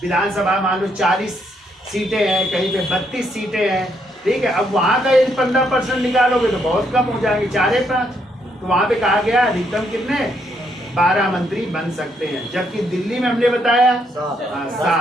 विधानसभा मान लो 40 सीटें हैं, कहीं पे 32 सीटें हैं। ठीक है, अब वहां का यदि 15% निकालोगे तो बहुत कम हो जाएंगे, 4-5। तो वहां पे कहा गया अधिकतम कितने? 12 मंत्री बन सकते हैं। जबकि दिल्ली में हमने बताया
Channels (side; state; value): both; normal; correlation 0.74